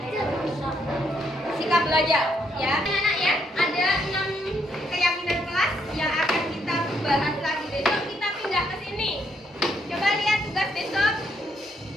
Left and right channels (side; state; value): both; normal; correlation 0.74